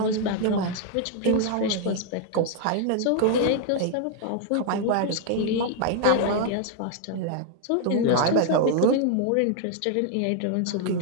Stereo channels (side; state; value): both; different; correlation 0.00